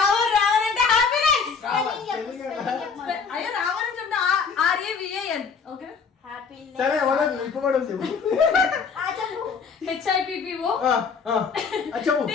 అంటే హ్యాపీనెస్. అయ్యో రావర్ అని చెప్తా RAVAN. ఓకే సరే వదలు ఇప్పబడదు చెప్పు. HIPPO చెప్పు.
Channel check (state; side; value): quieter; right; 5.7 dB